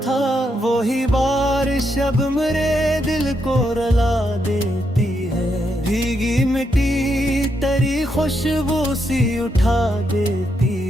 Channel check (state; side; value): normal; both; correlation 0.80